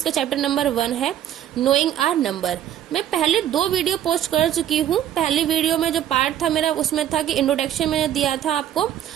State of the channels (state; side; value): quieter; left; 11.1 dB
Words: चैप्टर नंबर 1 है नोइंग आर नंबर। मैं पहले 2 वीडियो पोस्ट कर चुकी हूँ। पहले वीडियो में जो पार्ट था मेरा, उसमें था कि इंट्रोडक्शन मैंने दिया था आपको,